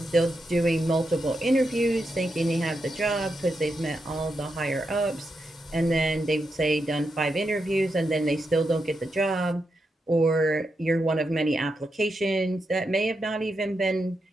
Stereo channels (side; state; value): both; normal; correlation 0.85